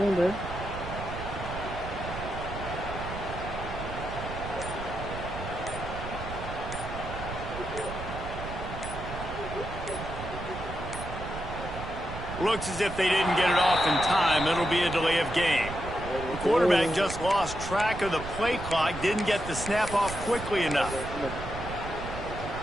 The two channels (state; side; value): noise; right; rumble, 8 dB below the sound